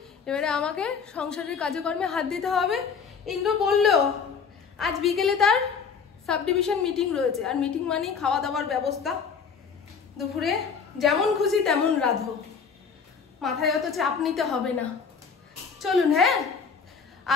এবারে আমাকে সংসারের কাজকর্মে হাত দিতে হবে। ইন্দ্র বললো আজ বিকেলে তার সাব ডিভিশন মিটিং রয়েছে, আর মিটিং মানেই খাওয়া দাওয়ার ব্যবস্থা। দুপুরে যেমন খুশি তেমন রাঁধো, মাথায় অত চাপ নিতে হবে না। চলুন। হ্যাঁ,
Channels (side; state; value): right; quieter; 6.0 dB